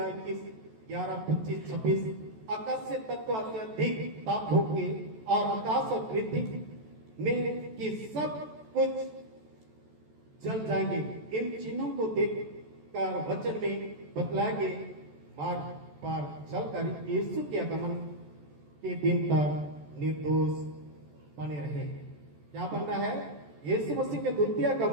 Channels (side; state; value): left; late; 14 ms